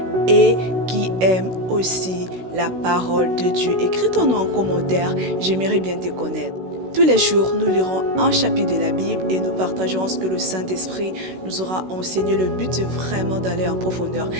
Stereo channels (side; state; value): left; late; 16 ms